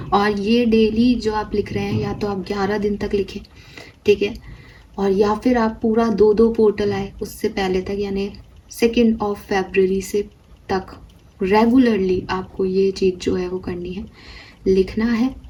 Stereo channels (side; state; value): both; identical; correlation 1.00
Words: और ये डेली जो आप लिख रहे हैं, या तो आप 11 दिन तक लिखें, ठीक है, और या फिर आप पूरा 2 पोर्टल आए उससे पहले तक, यानी 2 फरवरी से तक रेगुलरली आपको ये चीज़ जो है वो करनी है, लिखना है,